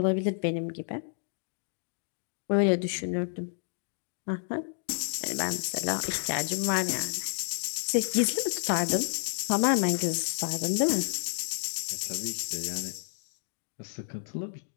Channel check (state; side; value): silent; right; digital silence